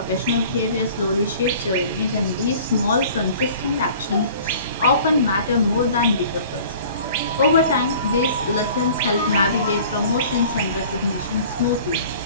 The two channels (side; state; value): both; inverted; correlation -0.48